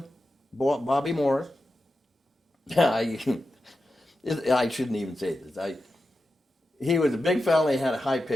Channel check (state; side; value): normal; both; correlation 0.91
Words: Bobby Morris, I shouldn't even say this. He was a big fella. He had a